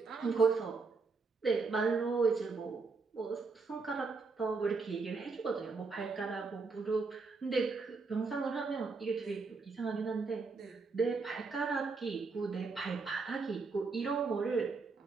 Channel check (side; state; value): left; quieter; 4.3 dB